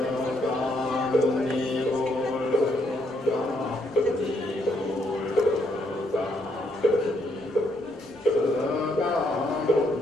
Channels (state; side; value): normal; both; correlation 0.73